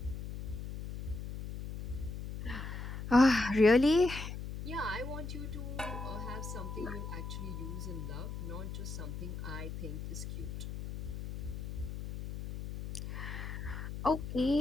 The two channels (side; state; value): left; noise; hum, 7 dB below the sound